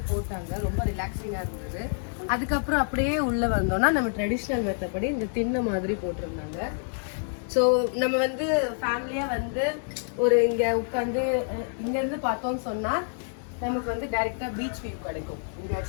போட்டாங்க, ரொம்ப ரிலாக்ஸிங்காக இருந்தது. அதுக்கப்புறம் அப்படியே உள்ளே வந்தோம்னா நம்ம ட்ரெடிஷ்னல் மெத்தப்படி இந்த திண்ணை மாதிரி போட்டிருந்தாங்க. ஸோ நம்ம வந்து ஃபேமிலியாக வந்து ஒரு இங்கே உட்காந்து இங்கேருந்து பார்த்தோம்னு சொன்னால் நமக்கு வந்து டைரெக்டாக பீச் வியூ கிடைக்கும். இங்கே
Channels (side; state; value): right; silent; digital silence